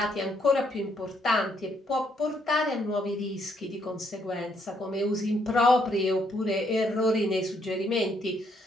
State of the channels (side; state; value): both; normal; correlation 0.72